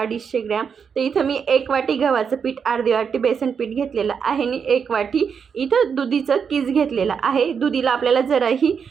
ग्रॅम. तर इथं मी 1 वाटी गव्हाचं पीठ, अर्धी वाटी बेसन पीठ घेतलेलं आहे आणि 1 वाटी इथं दुधीचं कीस घेतलेलं आहे. दुधीला आपल्याला जराही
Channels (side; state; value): left; quieter; 6.6 dB